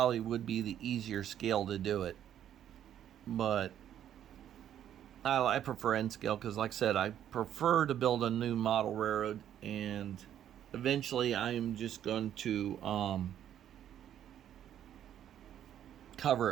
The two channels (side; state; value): left; quieter; 10.5 dB